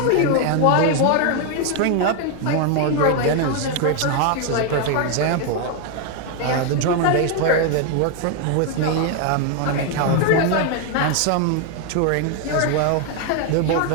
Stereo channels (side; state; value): both; different; correlation 0.01